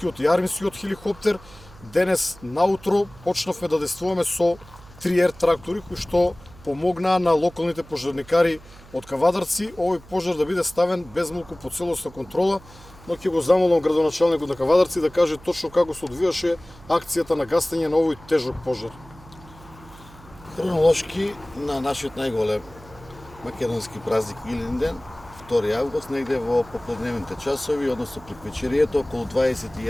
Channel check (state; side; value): noise; right; hum, 21 dB below the sound